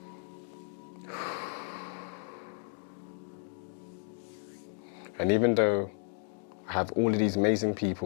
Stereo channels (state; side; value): silent; right; 56 dB below the other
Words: And even though I have all of these amazing